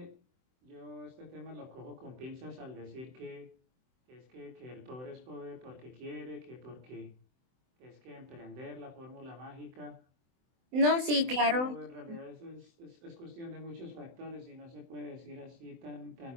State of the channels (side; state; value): left; late; 24 ms